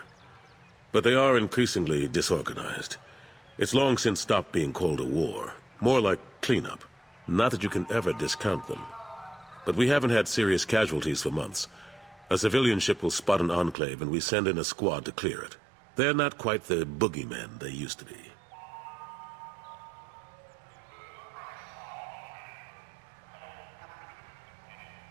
But they are increasingly disorganized. It's long since stopped being called a war. More like cleanup. Not that you can ever discount them. But we haven't had serious casualties for months. A civilian ship will spot an enclave and we send in a squad to clear it. They're not quite the boogeymen they used to be.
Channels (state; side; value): drops out; left; at 13.8 s